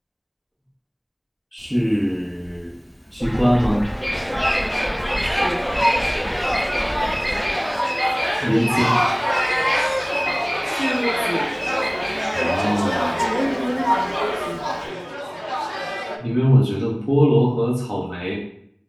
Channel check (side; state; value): both; identical; correlation 1.00